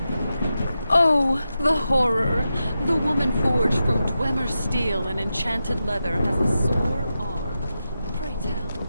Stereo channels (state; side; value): inverted; both; correlation -0.90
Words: Oh, the horror. The woman forged from Dwemer steel and enchanted leather has a sore arm. Pray tell,